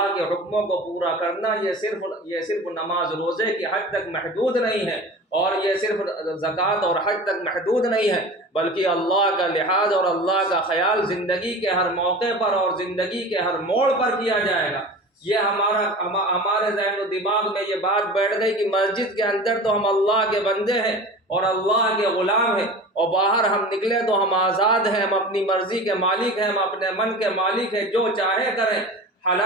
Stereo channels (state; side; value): normal; both; correlation 0.35